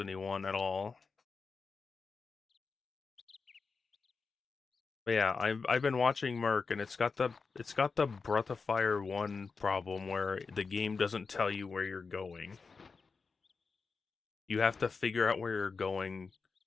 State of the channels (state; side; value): quieter; right; 4.8 dB